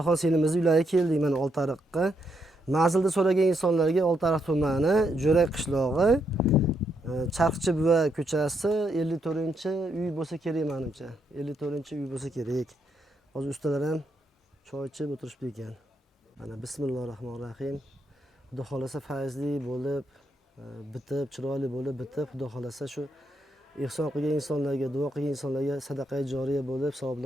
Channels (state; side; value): normal; both; correlation 0.78